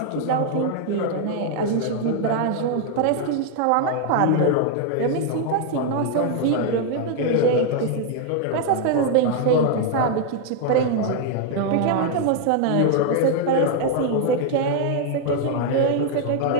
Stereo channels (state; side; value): different; both; correlation 0.00